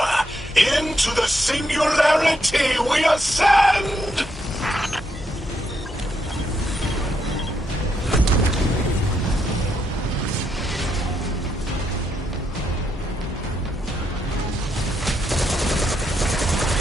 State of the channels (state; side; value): normal; both; correlation 0.79